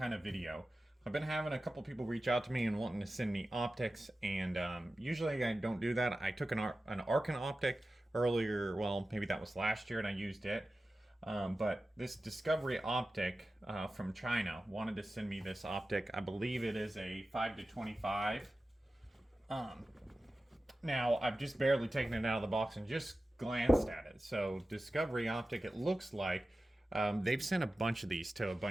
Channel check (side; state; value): both; normal; correlation 0.94